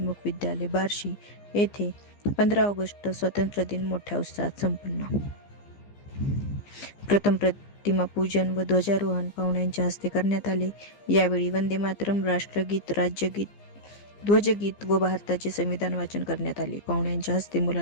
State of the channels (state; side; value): late; right; 15 ms